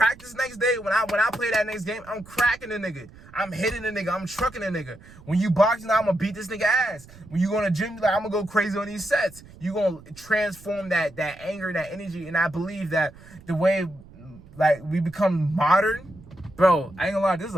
next day, when I play that next game, I'm cracking the nigga. I'm hitting the nigga. I'm trucking the nigga. When you boxing, I'm gonna beat this nigga ass. When you go to the gym, like, I'm gonna go crazy on these sets. You gonna transform that anger, that energy, and I believe that the way like we become modern. Bro, I ain't gonna lie, this is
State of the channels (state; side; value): noise; right; rumble, 21 dB below the sound